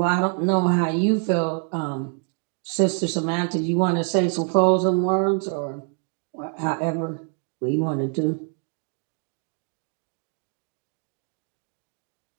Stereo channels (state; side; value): quieter; left; 39.5 dB